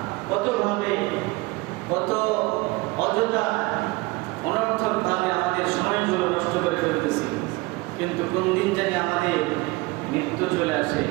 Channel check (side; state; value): left; quieter; 22.6 dB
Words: কতভাবে কত অযথা অনর্থক ভাবে আমাদের সময়গুলো নষ্ট করে ফেলতেছি। কিন্তু কোন দিন জানি আমাদের মৃত্যু চলে আসে,